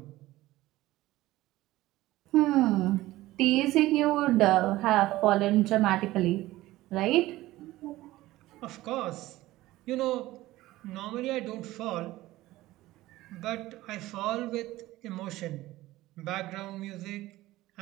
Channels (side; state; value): left; quieter; 17.1 dB